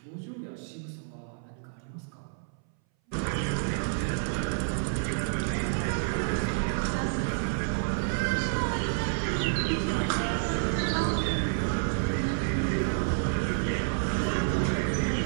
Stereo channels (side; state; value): left; silent; 58 dB below the other